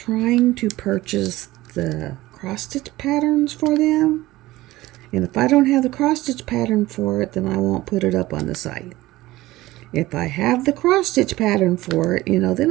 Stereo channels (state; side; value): quieter; left; 17.7 dB